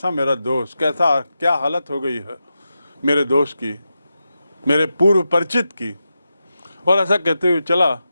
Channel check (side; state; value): both; inverted; correlation -0.89